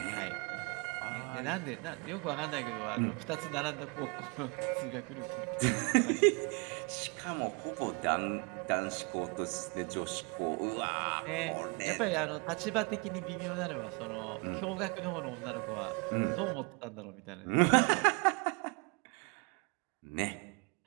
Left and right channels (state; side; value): quieter; left; 32.7 dB